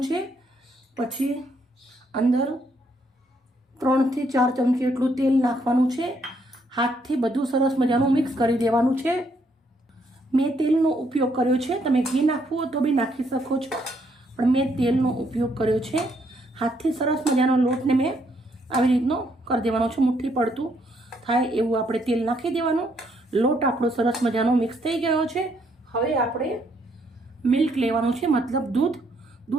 છે. પછી અંદર 3 થી 4 ચમચી એટલું તેલ નાખવાનું છે. હાથથી બધું સરસ મજાનું મિક્સ કરી દેવાનું છે. મેં તેલનો ઉપયોગ કર્યો છે. તમે ઘી નાખવું હોય તો બી નાખી શકો છો, પણ મેં તેલનો ઉપયોગ કર્યો છે. હાથથી સરસ મજાનો લોટને મેં આવી રીતનો કરી દેવાનો છે. મુઠ્ઠી પડતું થાય એવું આપણે તેલ નાખી દેવાનું. લોટ આપણો સરસ મજાનો મિક્સ થઈ ગયો છે. હવે આપણે મિલ્ક લેવાનું છે, મતલબ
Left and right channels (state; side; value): normal; both; correlation 0.71